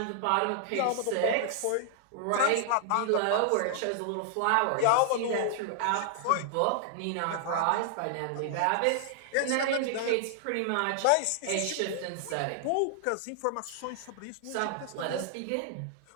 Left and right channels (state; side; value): different; both; correlation -0.01